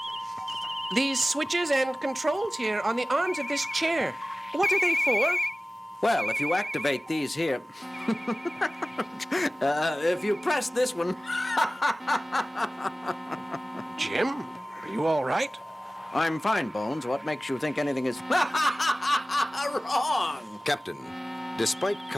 These switches and controls here on the arms of this chair, what are they for? Well, if you activate these here... if you press this one... Jim, are you all right? I'm fine, Bones. What makes you think anything is... wrong? Captain, despite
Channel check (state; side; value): normal; both; correlation 0.97